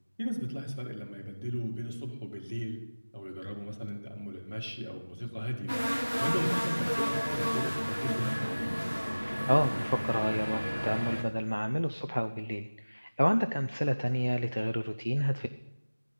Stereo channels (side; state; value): both; inverted; correlation -1.00